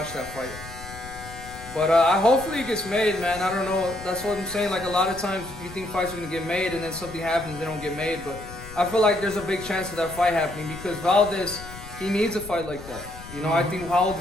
that fight? But hopefully it gets made, man. I don't know. That's what I'm saying. Like, a lot of times you think fights are going to get made and then something happens, they don't get made. But I feel like there's a big chance of that fight happening because Valdez, he needs a fight like that. You know, I think, how old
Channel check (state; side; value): noise; left; rumble, 15 dB below the sound